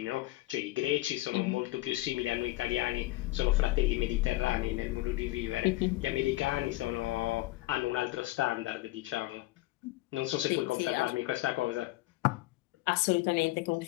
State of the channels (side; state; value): right; quieter; 18.6 dB